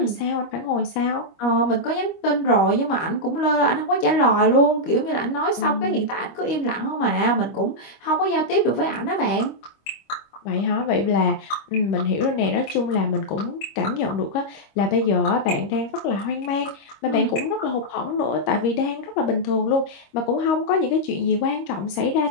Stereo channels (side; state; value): right; late; 25 ms